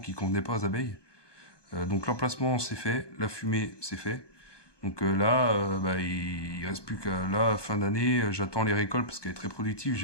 convenait pas aux abeilles. Donc l'emplacement c'est fait, la fumée c'est fait. Donc là, il reste plus qu'à là, fin d'année, j'attends les récoltes parce qu'elle est très productive,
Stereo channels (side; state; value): right; late; 1.2 ms